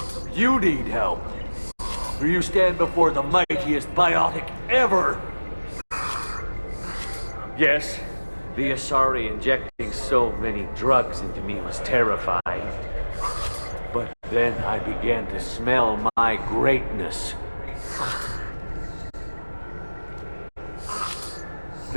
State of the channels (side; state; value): both; inverted; correlation -1.00